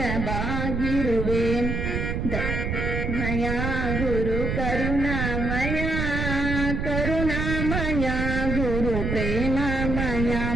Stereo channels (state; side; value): noise; right; rumble, 1 dB below the sound